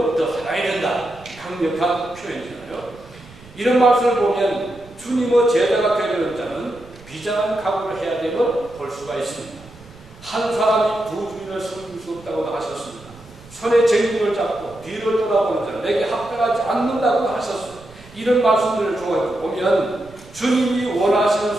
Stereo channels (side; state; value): right; noise; rumble, 22 dB below the sound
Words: 더 사랑해야 된다. 강력한 표현이잖아요. 이런 말씀을 보면 주님의 제자가 되려는 자는 비장한 각오를 해야 됨을 볼 수가 있습니다. 한 사람이 두 주인을 섬길 수 없다고 하셨습니다. 손에 쟁기를 잡고 뒤를 돌아보는 자는 내게 합당하지 않는다고 하셨습니다. 이런 말씀들을 보면 주님이